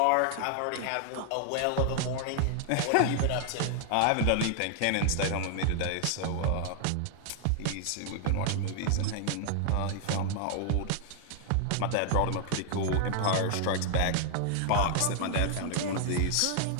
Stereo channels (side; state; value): both; different; correlation 0.00